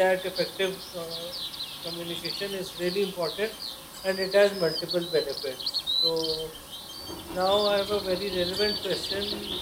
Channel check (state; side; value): identical; both; correlation 1.00